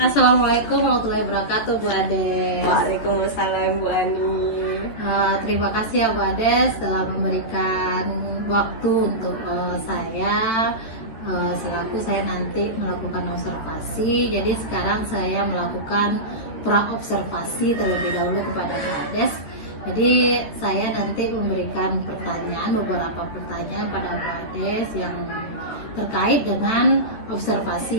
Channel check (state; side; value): late; right; 14 ms